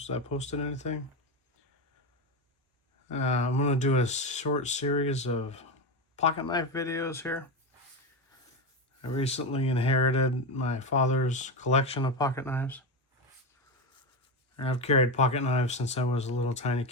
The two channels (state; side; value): normal; both; correlation 0.14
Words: I posted anything. I'm going to do a short series of pocket knife videos here. I recently inherited my father's collection of pocket knives. I've carried pocket knives since I was a little tiny